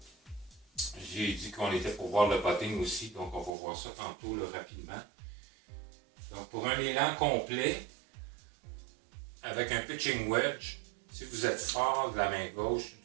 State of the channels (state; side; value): drops out; left; at 3.6 s